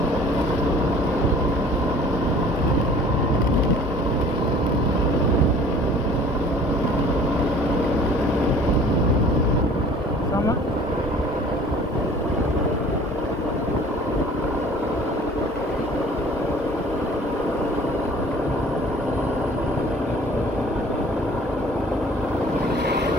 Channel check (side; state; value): both; normal; correlation 0.50